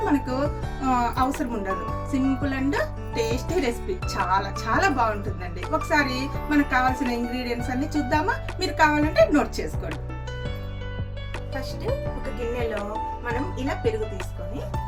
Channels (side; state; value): both; identical; correlation 1.00